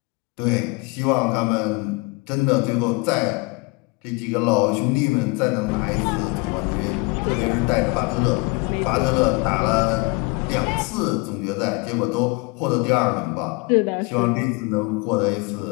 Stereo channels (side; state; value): right; quieter; 27.7 dB